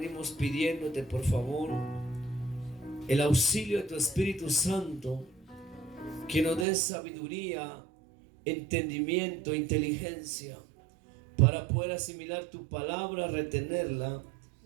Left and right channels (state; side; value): drops out; left; at 6.7 s